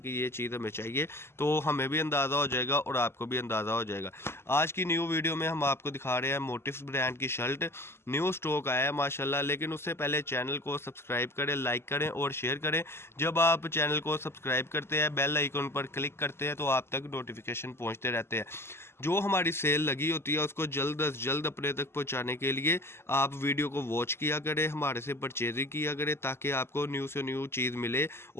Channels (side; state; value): right; late; 0.12 ms